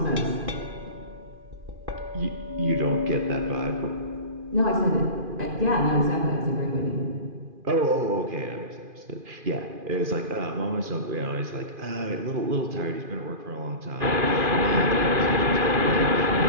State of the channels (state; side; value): late; left; 2.5 ms